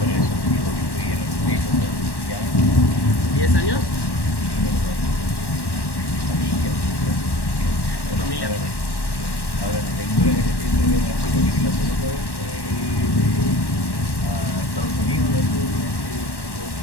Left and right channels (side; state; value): right; late; 1.1 ms